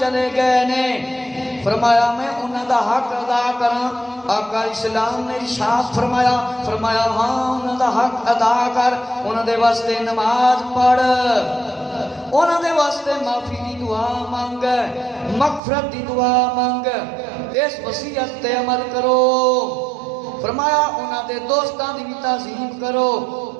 گئے نے، فرمایا میں انہاں دا حق ادا کراں؟ آقا اسلام نے ارشاد فرمایا ہاں انہاں دا حق ادا کر، انہاں دے واسطے نماز پڑھ، انہاں دے واسطے معافی دی دعا مانگ، مغفرت دی دعا مانگ، اس وصیت تے عمل کرو۔ فرمایا انہاں دے دوستاں دی بھی تعظیم کرو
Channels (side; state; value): left; drops out; at 15.6 s